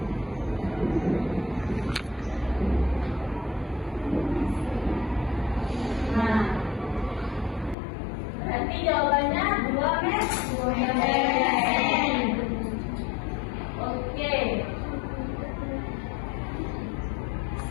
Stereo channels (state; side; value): drops out; right; at 7.8 s